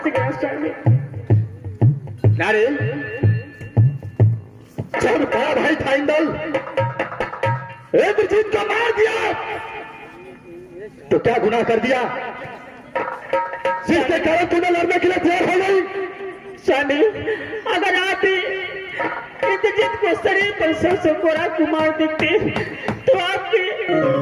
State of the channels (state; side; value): identical; both; correlation 1.00